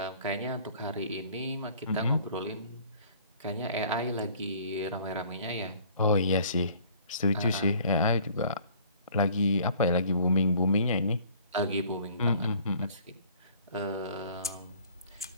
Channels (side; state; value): both; inverted; correlation -0.54